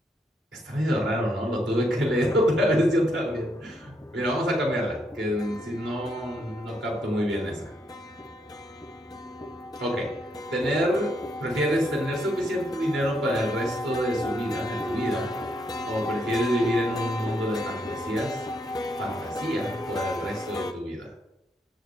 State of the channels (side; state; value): both; normal; correlation 0.76